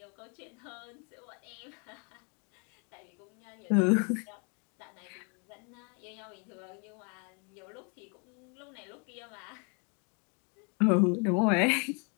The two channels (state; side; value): quieter; right; 35.9 dB